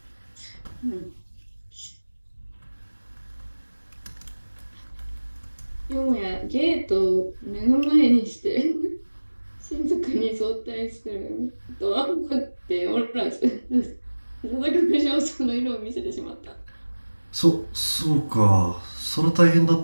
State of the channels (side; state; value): both; inverted; correlation -1.00